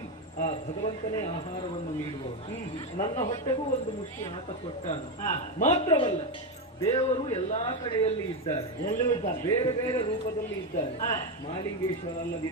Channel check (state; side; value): normal; both; correlation 0.10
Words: ಆ ಭಗವಂತನೇ ಆಹಾರವನ್ನು ನೀಡುವವನು. ನನ್ನ ಹೊಟ್ಟೆಗೂ ಒಂದು ಮುಷ್ಟಿ ಆತ ಕೊಟ್ಟಾನು. ಮಾತ್ರವಲ್ಲ, ದೇವರು ಎಲ್ಲಾ ಕಡೆಯಲ್ಲಿ ಇದ್ದಾರೆ, ಬೇರೆ ಬೇರೆ ರೂಪದಲ್ಲಿ ಇದ್ದಾರೆ. ಮಹಾಲಿಂಗೇಶ್ವರ